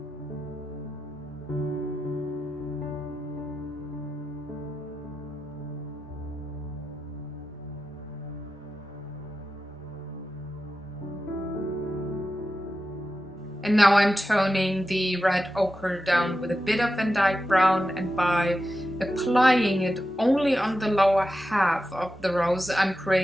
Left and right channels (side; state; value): both; normal; correlation 0.91